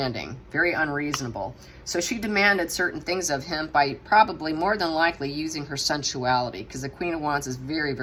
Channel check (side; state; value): both; identical; correlation 1.00